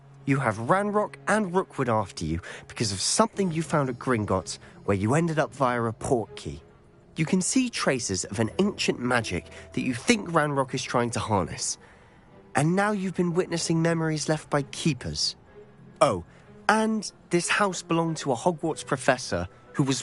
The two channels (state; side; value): identical; both; correlation 1.00